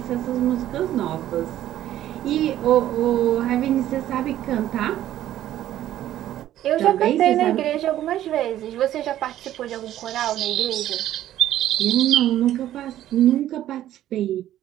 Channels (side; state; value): left; quieter; 12.7 dB